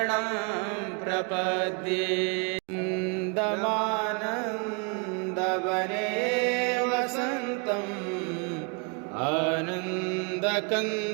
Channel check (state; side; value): quieter; left; 34.6 dB